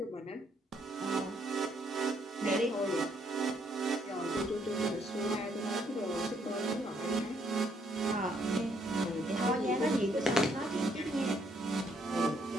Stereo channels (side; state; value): both; normal; correlation 0.70